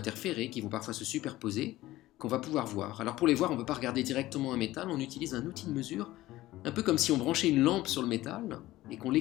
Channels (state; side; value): quieter; right; 16.6 dB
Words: qui vont parfois se superposer, qu'on va pouvoir voir. Alors pour les voir, on ne peut pas regarder directement un métal, on utilise un outil de mesure, un peu comme si on branchait une lampe sur le métal et qu'on